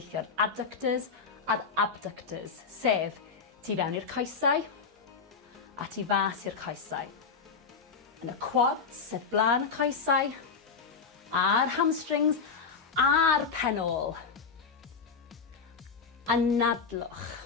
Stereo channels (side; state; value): right; quieter; 5.4 dB